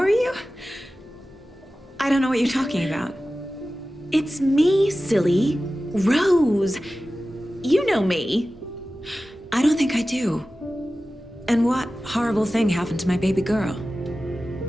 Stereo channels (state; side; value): normal; both; correlation 0.95